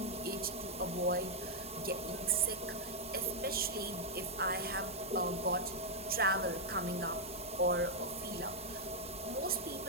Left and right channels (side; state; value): both; normal; correlation -0.04